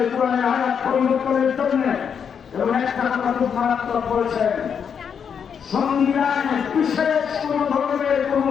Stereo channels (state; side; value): quieter; right; 7.2 dB